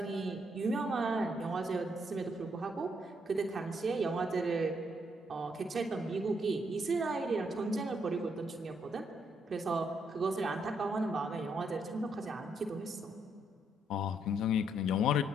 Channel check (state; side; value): normal; both; correlation 0.74